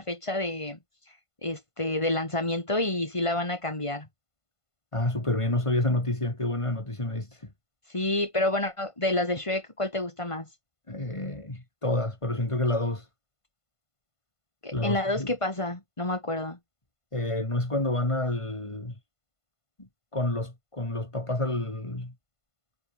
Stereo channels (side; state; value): right; late; 1.5 ms